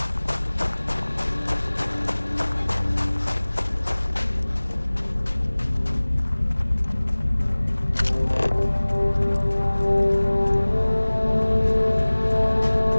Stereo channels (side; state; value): both; inverted; correlation -1.00